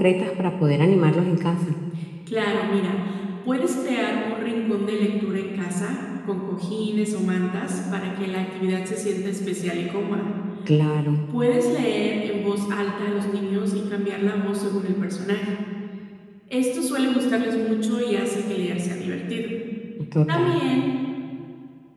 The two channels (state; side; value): identical; both; correlation 1.00